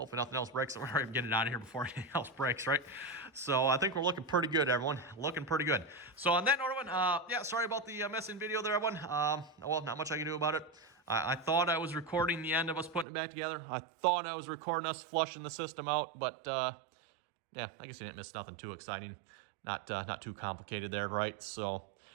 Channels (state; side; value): drops out; left; at 13.1 s